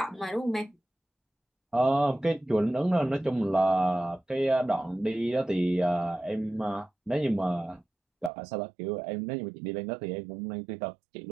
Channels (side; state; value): left; drops out; at 8.3 s